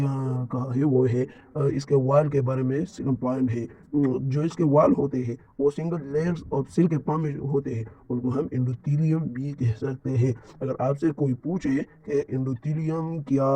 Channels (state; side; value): identical; both; correlation 1.00